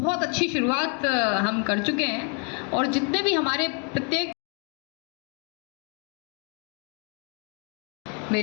अच्छी शुरुआत हम कर चुके हैं। और जितने भी हमारे प्रत्येक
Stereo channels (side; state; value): right; quieter; 36.1 dB